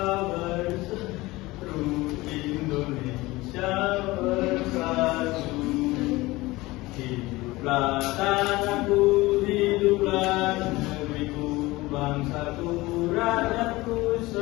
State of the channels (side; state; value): right; quieter; 20.2 dB